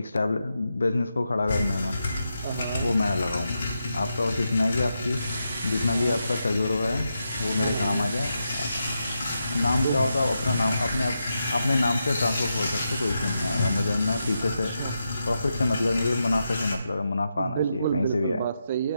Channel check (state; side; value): inverted; both; correlation -0.86